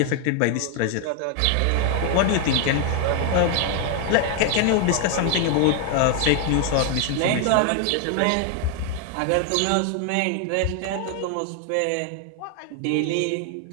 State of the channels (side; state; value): both; different; correlation 0.01